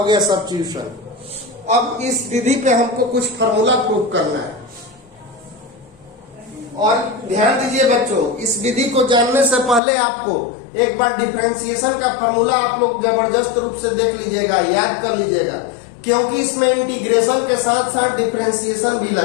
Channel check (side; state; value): right; drops out; at 9.8 s